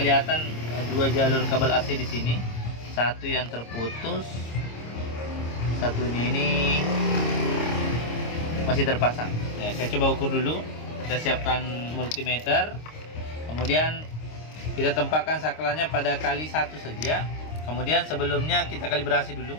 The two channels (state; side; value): late; right; 26 ms